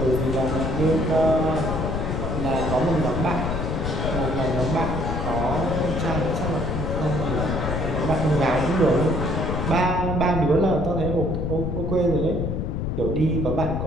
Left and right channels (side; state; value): left; noise; rumble, 2 dB below the sound